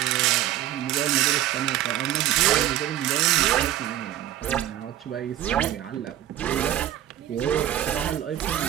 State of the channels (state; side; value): quieter; left; 12.5 dB